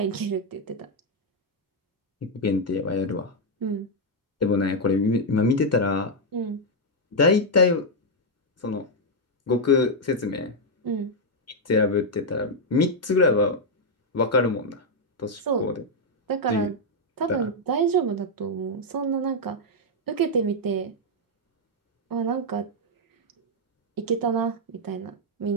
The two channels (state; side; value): normal; both; correlation -0.01